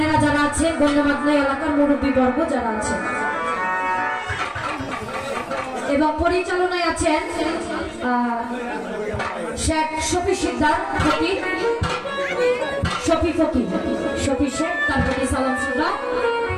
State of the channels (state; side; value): identical; both; correlation 1.00